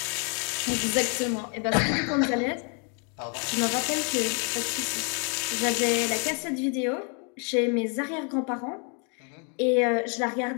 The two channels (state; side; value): quieter; right; 37.6 dB